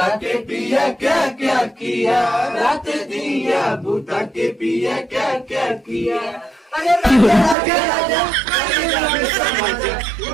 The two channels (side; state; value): left; drops out; at 7.6 s